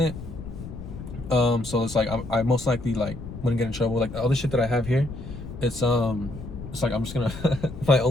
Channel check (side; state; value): left; noise; rumble, 11 dB below the sound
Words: So it's like I most likely like wouldn't get in trouble. Like all the shit that I have here, it's like I'm just gonna my